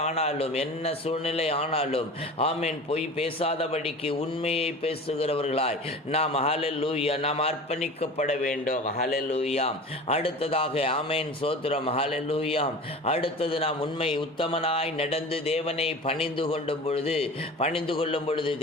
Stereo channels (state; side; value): normal; both; correlation 0.36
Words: ஆனாலும், என்ன சூழ்நிலை ஆனாலும், ஆமென், பொய் பேசாதபடிக்கு உண்மையை பேசுகிறவர்களாய் நாம், ஹல்லேலூயா, நாம் அர்ப்பணிக்கப்பட வேண்டும். ஹல்லேலூயா. அடுத்ததாக, ஆமென், சோத்திரம், ஹல்லேலூயா, அடுத்தது நாம் உண்மை உத்தமனாய் நடந்து தேவனை பணிந்து கொள்ளும் பொழுது